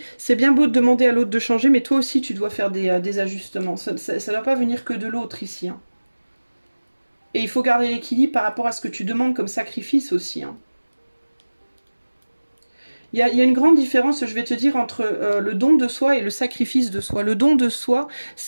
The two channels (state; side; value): inverted; both; correlation -1.00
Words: bien beau de demander à l'autre de changer, mais toi aussi tu dois faire des ajustements. Ça ne doit pas venir que de l'autre ici. Hein. Et il faut garder l'équilibre par rapport à ce que tu demandes comme sacrifice aussi. Hein. Il y a une grande différence, je vais te dire, entre le don de soi et le sacrifice de soi. Le don de soi,